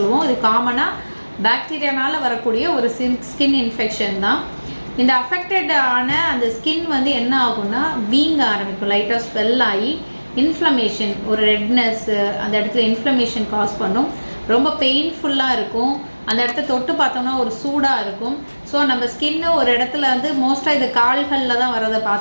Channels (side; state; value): both; inverted; correlation -1.00